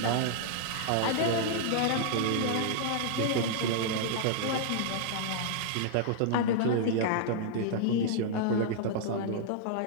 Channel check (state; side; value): different; both; correlation -0.01